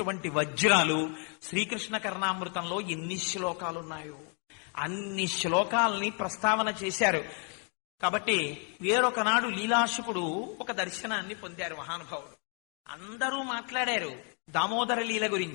వజ్రాలు. శ్రీకృష్ణ కర్ణామృతంలో ఎన్ని శ్లోకాలున్నాయో అన్ని శ్లోకాలని ప్రస్తావన చేశారు. కాబట్టి వేరొకనాడు లీలాశుకుడు ఒక దర్శనాన్ని పొందారు మహానుభావుడు. అందరూ మాట్లాడారు దామోదర లీల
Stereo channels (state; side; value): quieter; right; 39.9 dB